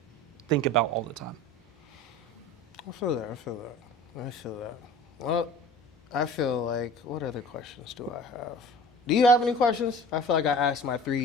think about all the time. I feel that. Well, I feel like, what other questions do I have? Do you have any questions? I feel like I asked my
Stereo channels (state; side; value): normal; both; correlation 0.41